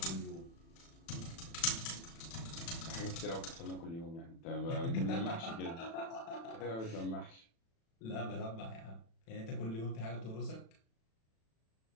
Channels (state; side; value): late; right; 36 ms